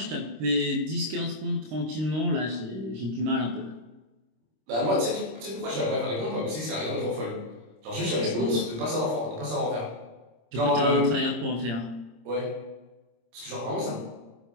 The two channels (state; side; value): late; left; 26 ms